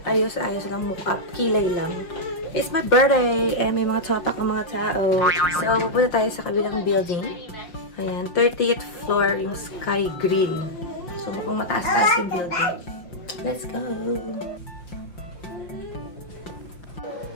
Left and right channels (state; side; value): late; right; 5.8 ms